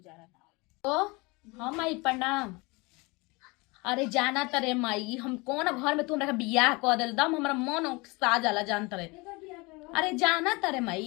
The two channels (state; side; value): quieter; right; 25.9 dB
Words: ना हो। ओ हाँ माई प्रणाम। अरे जाना तरे माई, हम कौन घर में तू हमरा के बियाह कर देल दम हमरा मन सा जाला जान तरे। अरे जाना तरे